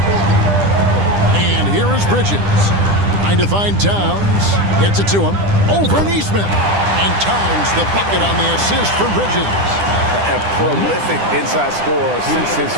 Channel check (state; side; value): late; left; 10 ms